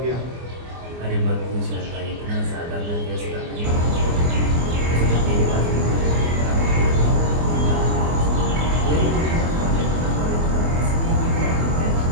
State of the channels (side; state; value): left; late; 24 ms